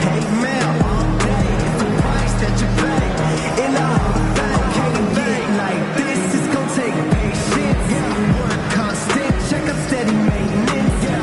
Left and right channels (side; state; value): both; identical; correlation 1.00